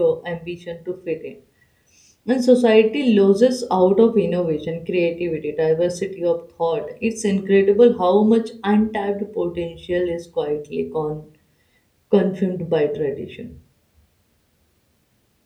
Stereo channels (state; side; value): identical; both; correlation 1.00